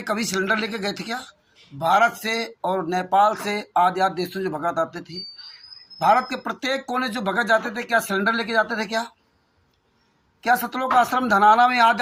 कभी सिलेंडर लेके गए थे क्या? भारत से और नेपाल से आदि देशों जो भगत आते थे, भारत के प्रत्येक कोने जो भगत जाते थे, क्या सिलेंडर लेके जाते थे? क्या सतलोक आश्रम धनाना में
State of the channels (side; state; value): both; identical; correlation 1.00